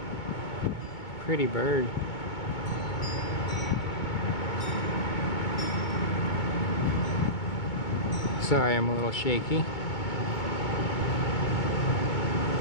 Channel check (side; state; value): right; late; 2.2 ms